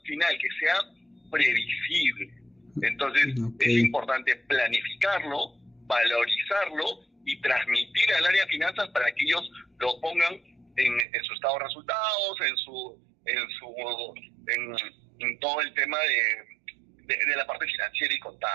final, que sea previsible. Entonces, es importante planificarlo, valorizarlo y transmitir al área de finanzas para que ellos lo pongan en su estado de resultados, en todo el tema de la parte financiera y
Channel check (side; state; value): left; drops out; at 11.1 s